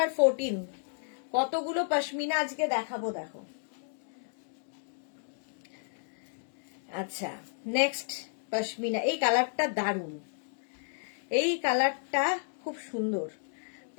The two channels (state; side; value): silent; right; digital silence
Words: 14। কতগুলো পশমিনা আজকে দেখাবো, দেখো। আচ্ছা, নেক্সট পশমিনা। এই কালারটা দারুণ, এই কালারটা খুব সুন্দর।